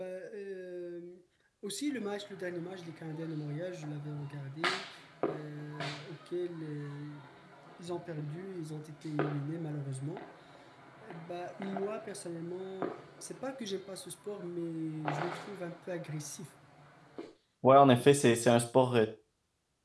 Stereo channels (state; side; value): identical; both; correlation 1.00